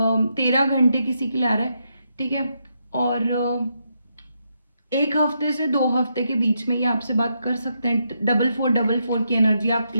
13 घंटे किसी के लिए आ रहा है। ठीक है, और 1 हफ्ते से 2 हफ्ते के बीच में ये आपसे बात कर सकते हैं। 4444 की एनर्जी आप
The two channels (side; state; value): both; inverted; correlation -0.81